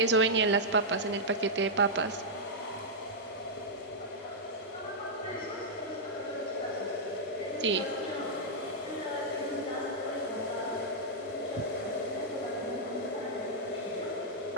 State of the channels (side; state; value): both; normal; correlation -0.08